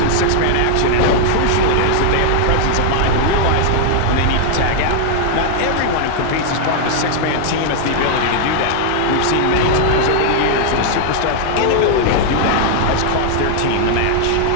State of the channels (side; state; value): both; different; correlation -0.01